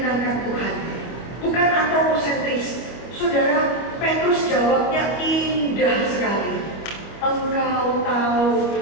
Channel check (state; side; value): late; right; 26 ms